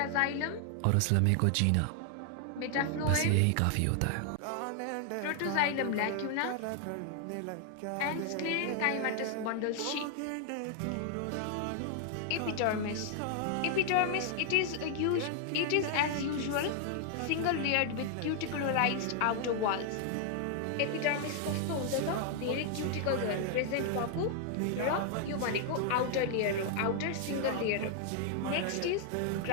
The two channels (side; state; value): both; different; correlation 0.00